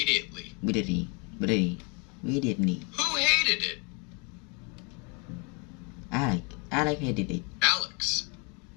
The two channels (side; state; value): right; quieter; 30.0 dB